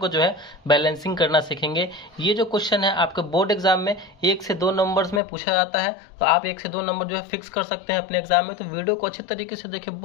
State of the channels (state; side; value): drops out; right; at 5.2 s